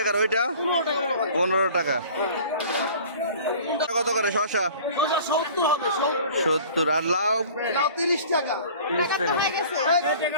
ওইটা 15 টাকা। কত করে শসা? 70। আর লাউ? 30 টাকা। 30 টাকা।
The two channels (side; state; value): both; inverted; correlation -0.45